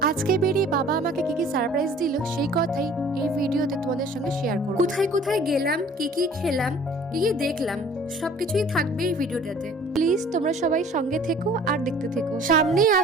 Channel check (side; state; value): both; normal; correlation 0.50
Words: আজকে বেরিয়ে বাবা আমাকে কি কি সারপ্রাইজ দিল সেই কথাই এই ভিডিওতে তোমাদের সঙ্গে শেয়ার করব। কোথায় কোথায় গেলাম, কি কি খেলাম, কি কি দেখলাম, সবকিছুই থাকবে এই ভিডিওটাতে। প্লিজ তোমরা সবাই সঙ্গে থেকো আর দেখতে থেকো। সামনেই